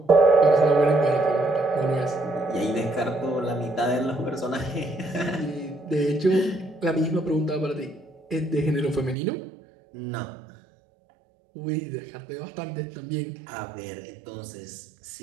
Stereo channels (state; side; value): drops out; left; at 9.2 s